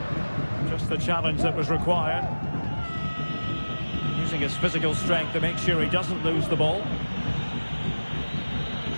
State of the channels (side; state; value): both; inverted; correlation -1.00